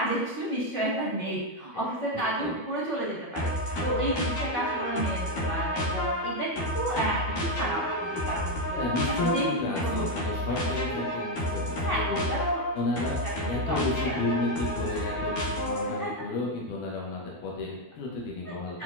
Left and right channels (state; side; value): late; right; 12 ms